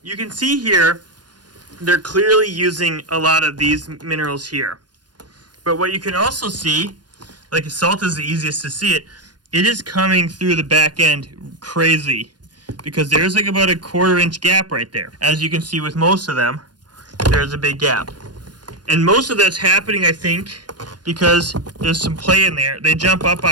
You can see here they're clearly using a lot of these minerals here. But what you can also see, like salt is the easiest to see it, it is coming through the back end crazy because there's like about a 1/4 inch gap right there. As you can see with most of them, there's a big gap. And most of that's happening, I think, because there's some play in there. They jump up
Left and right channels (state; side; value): late; left; 0.69 ms